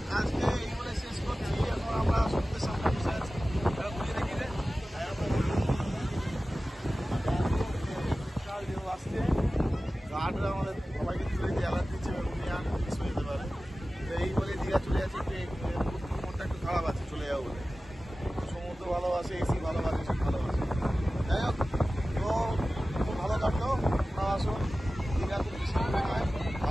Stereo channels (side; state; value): both; normal; correlation 0.96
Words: আজকে এই বলে শেষ করছি, এখন আমরা সমুদ্রের সামনে বসে আছি। আসছে গার্ডরা আমাদের সবাইকে তুলে দিয়ে অ্যালার্ট দিচ্ছে, মিস হয়ে যেতে পারে। তো এই বলে দীঘা চলে যাচ্ছি, মনটা একটু খারাপ আছে, চলে যাবো বলে। সমুদ্র ভালোবাসে, এসি ভালোবাসে, সব ভালোবাসে। যাই হোক, তো খুব ভালো কাটলো। আসুন, দীঘা খুব বেশি দূরে নয়,